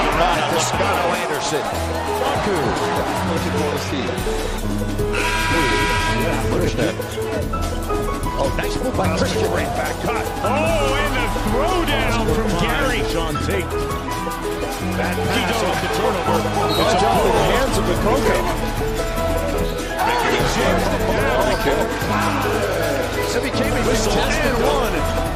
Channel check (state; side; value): identical; both; correlation 1.00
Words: by Toscano Anderson. Looking for the seat. Oh, nice move by Christian. Right back cut. Oh, and the throwdown from Gary. Sean Tate. That pass off the turnover. It's off in the hands of the Coco. So became a whistle and one.